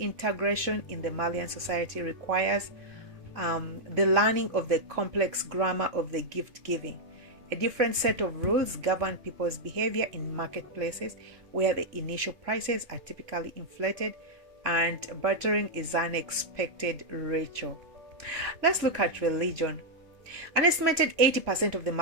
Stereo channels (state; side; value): late; left; 2.5 ms